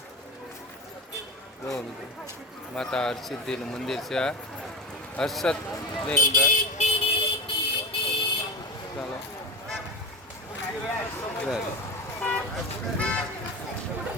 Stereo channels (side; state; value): both; normal; correlation 0.23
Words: જો મિત્રો, માતા હરસિદ્ધિનું મંદિર છે. આ હર્ષદની અંદર. ચાલો